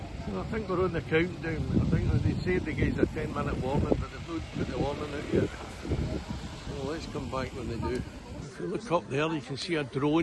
So I think we're on the countdown. I think they said they gave us a 10-minute warning, but they've not put the warning out yet. So let's come back when they do. If you look up there, you can see a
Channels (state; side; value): identical; both; correlation 1.00